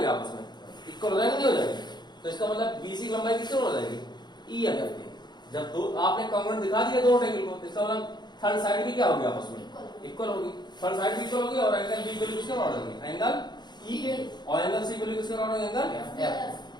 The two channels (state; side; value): late; right; 0.21 ms